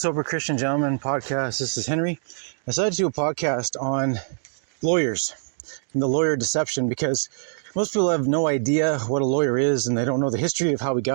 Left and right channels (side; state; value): left; silent; digital silence